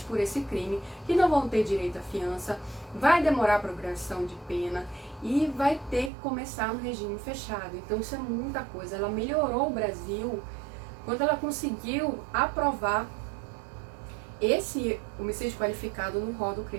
por esse crime, que não vão ter direito à fiança, vai demorar a progressão de pena e vai ter que começar no regime fechado. Então isso é muita coisa. Ela melhorou o Brasil quando ela conseguiu aprovar esse homicídio qualificado no rol do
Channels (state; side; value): drops out; left; at 6.1 s